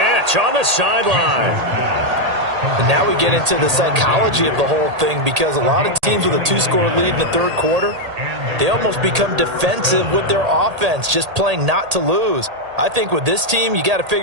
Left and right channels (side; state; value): left; late; 1.8 ms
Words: on the sideline. And now we get into the psychology of the whole thing, because a lot of teams with a 2-score lead in the third quarter, they almost become defensive with their offense, just playing not to lose. I think with this team, you got to